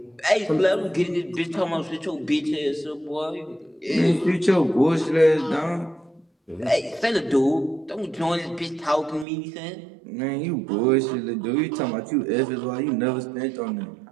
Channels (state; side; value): drops out; left; at 9.2 s